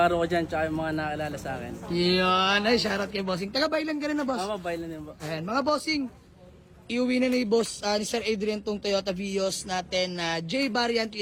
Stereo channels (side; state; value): both; identical; correlation 1.00